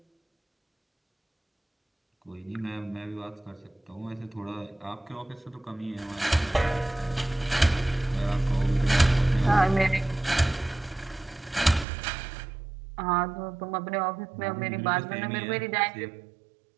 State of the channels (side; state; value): left; drops out; at 11.9 s